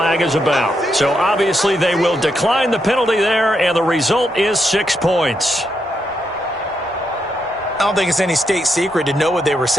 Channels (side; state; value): both; normal; correlation 0.81